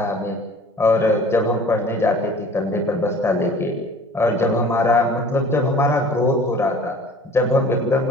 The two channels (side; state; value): both; normal; correlation 0.47